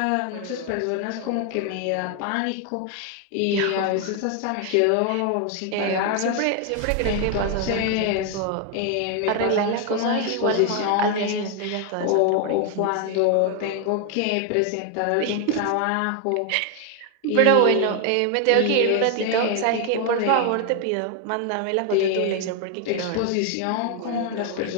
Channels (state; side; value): different; both; correlation 0.01